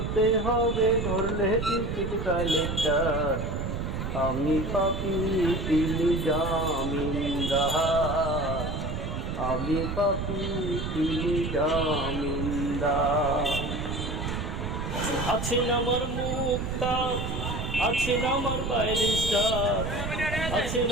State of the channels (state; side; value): noise; right; rumble, 4 dB below the sound